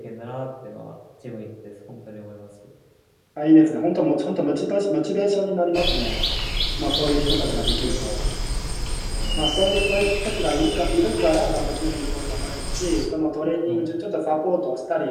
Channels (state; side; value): identical; both; correlation 1.00